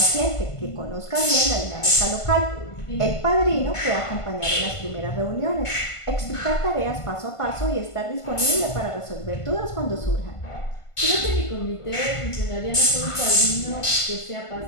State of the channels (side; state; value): right; late; 1.5 ms